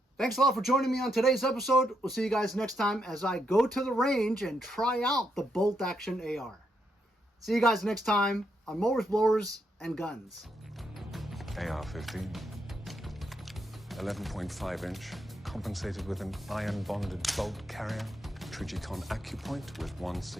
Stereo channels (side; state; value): both; normal; correlation 0.79